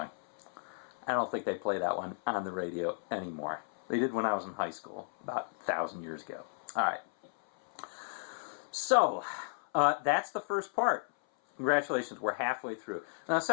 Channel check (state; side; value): silent; right; 55 dB below the other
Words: I don't think they play that one on the radio anymore. They did when I was in high school, about 1,000 years ago. All right. So, that's the first part. Congratulations, we're halfway through. Now, the